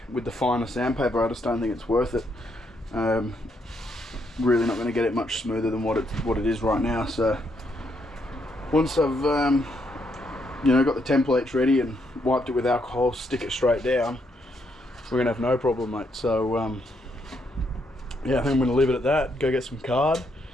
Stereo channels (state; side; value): normal; both; correlation 0.75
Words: finer sandpaper. I just don't think it's worth it. Really not going to get it much smoother than what it is right now. So once I've you know, got the templates ready and wiped it with alcohol, stick it straight down, we're gonna have no problem, mate. So yeah, I think I'm gonna leave it at that. Go get some card,